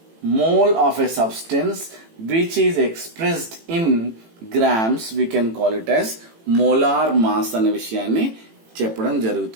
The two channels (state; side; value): late; left; 18 ms